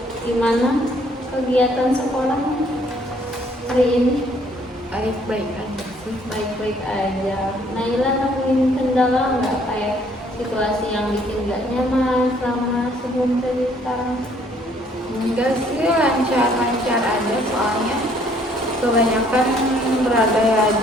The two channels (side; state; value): both; normal; correlation 0.63